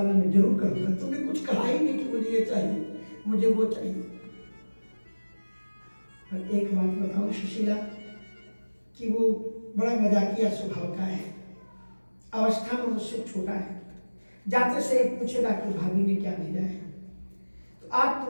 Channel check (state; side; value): inverted; both; correlation -1.00